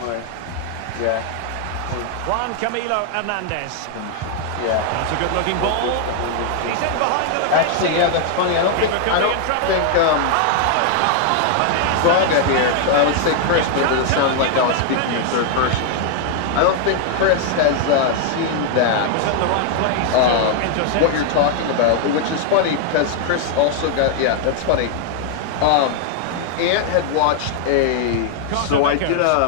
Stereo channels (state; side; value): different; both; correlation 0.00